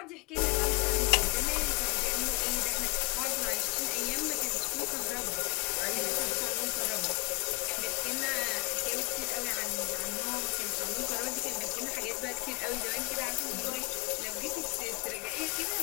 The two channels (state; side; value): quieter; right; 29.2 dB